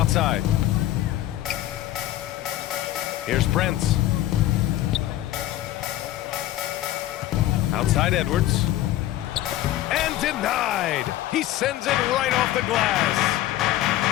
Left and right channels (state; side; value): quieter; right; 14.3 dB